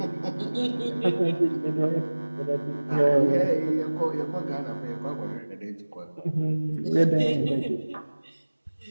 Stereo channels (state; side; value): inverted; both; correlation -1.00